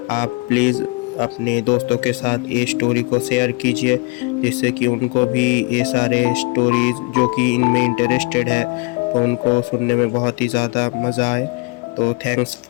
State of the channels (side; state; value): right; quieter; 28.9 dB